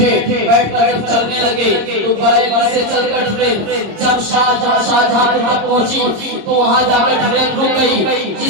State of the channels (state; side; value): late; left; 26 ms